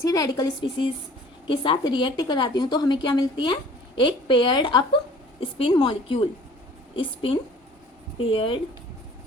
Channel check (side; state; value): both; normal; correlation 0.50